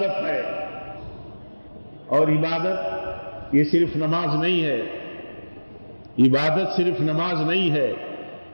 ہے۔ اور عبادت یہ صرف نماز نہیں ہے، عبادت صرف نماز نہیں ہے،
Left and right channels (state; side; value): inverted; both; correlation -1.00